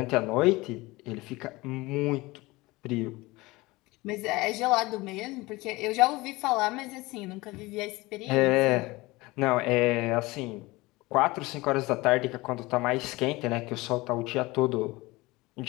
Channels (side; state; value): right; quieter; 21.6 dB